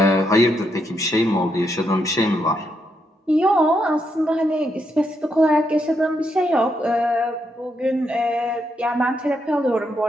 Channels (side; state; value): both; normal; correlation 0.79